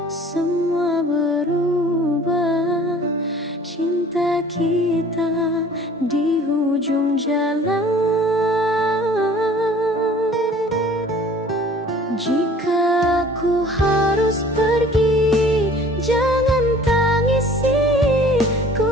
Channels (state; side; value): normal; both; correlation 0.50